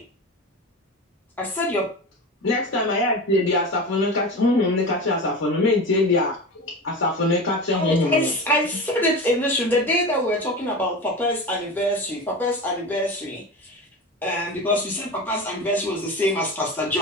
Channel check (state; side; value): normal; both; correlation 0.28